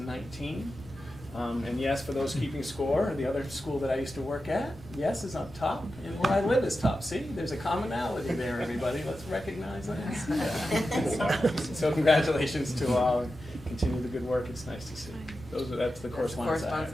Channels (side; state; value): both; normal; correlation 0.91